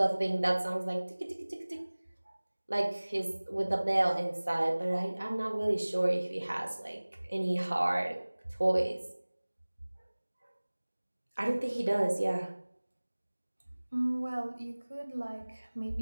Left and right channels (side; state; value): both; inverted; correlation -1.00